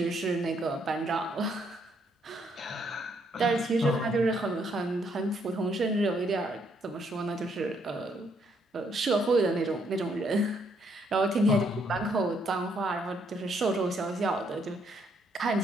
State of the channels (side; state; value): both; normal; correlation 0.71